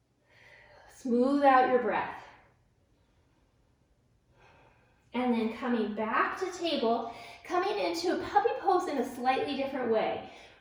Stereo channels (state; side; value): identical; both; correlation 1.00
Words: Smooth out your breath. And then coming back to table, coming into a puppy pose in a slightly different way.